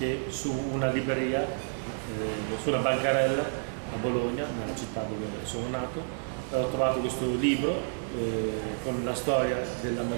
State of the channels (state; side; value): silent; left; digital silence